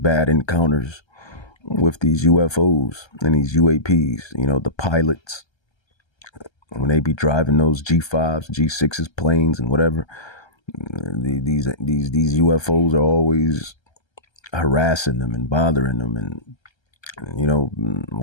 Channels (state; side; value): late; right; 1.3 ms